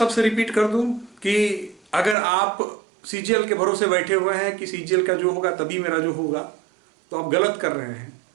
रिपीट कर दूं कि अगर आप सीजीएल के भरोसे बैठे हुए हैं कि सीजीएल का जो होगा तभी मेरा जो होगा, तो आप गलत कर रहे हैं।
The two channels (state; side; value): drops out; left; at 2.1 s